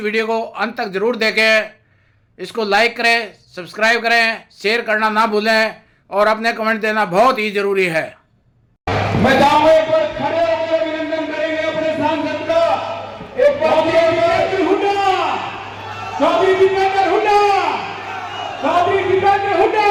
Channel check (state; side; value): identical; both; correlation 1.00